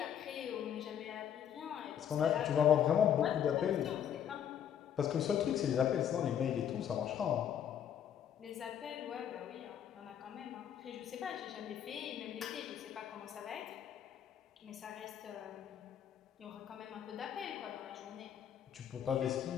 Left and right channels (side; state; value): right; quieter; 9.4 dB